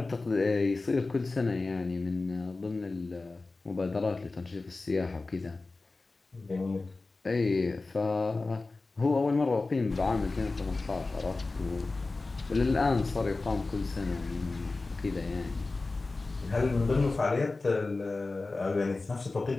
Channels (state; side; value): quieter; right; 3.5 dB